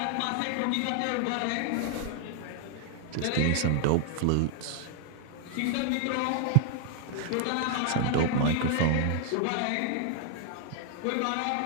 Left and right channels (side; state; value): both; different; correlation 0.00